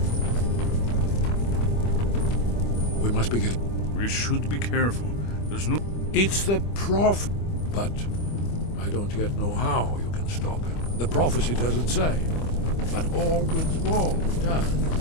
must be getting... We should be careful. There's no... It's the Prophet. But I don't yet know how you can stop him. The prophecy doesn't say. But Orwin's wall does.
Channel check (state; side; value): late; right; 25 ms